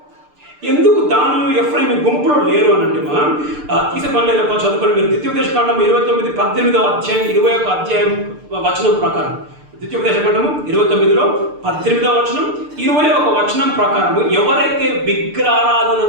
ఎందుకు దాను ఎఫ్రాయిం గుంపులో లేరు అని అంటే తీసే పని లేదు. చదువుకొని మీరు ద్వితీయోపదేశకాండం 29, 18వ అధ్యాయం, 21వ అధ్యాయం వచనం ప్రకారం ద్వితీయోపదేశకాండము 29లో 18వ వచనం 21వ వచనం ప్రకారము ఎవరైతే విగ్రహారాధన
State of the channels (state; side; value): late; left; 6.7 ms